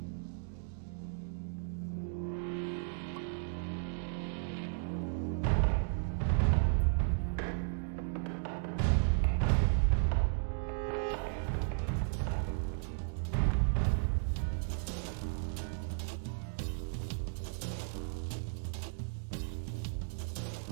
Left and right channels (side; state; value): left; silent; digital silence